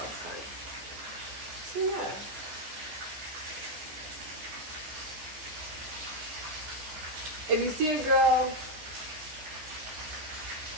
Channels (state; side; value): late; left; 14 ms